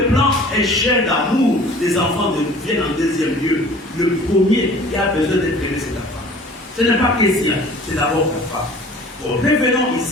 plan échelle d'amour, les enfants viennent en deuxième lieu. Le premier qui a besoin d'être aimé, c'est la femme. Ce n'est pas question, c'est d'abord la femme. Bon, revenons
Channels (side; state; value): both; normal; correlation 0.47